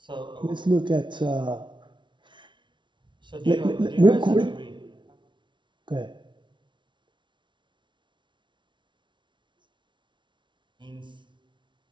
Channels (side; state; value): left; late; 0.23 ms